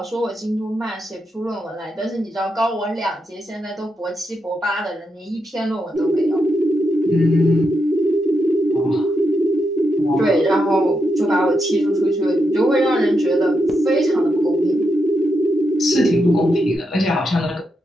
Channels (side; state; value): both; normal; correlation 0.84